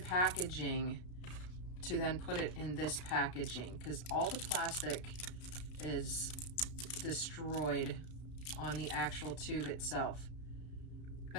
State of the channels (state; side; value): late; right; 33 ms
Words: to then put it in this packaging because all the plastic is destroyed on the actual tube itself.